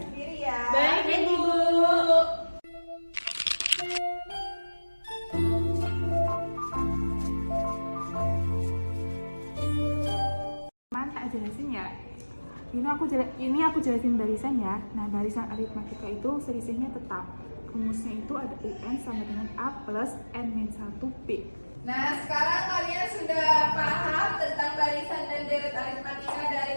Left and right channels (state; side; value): inverted; both; correlation -1.00